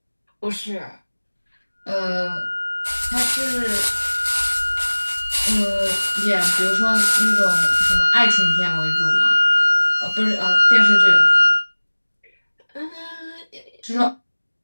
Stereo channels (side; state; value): both; inverted; correlation -1.00